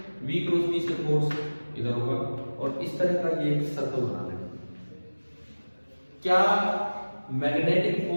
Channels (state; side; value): inverted; both; correlation -1.00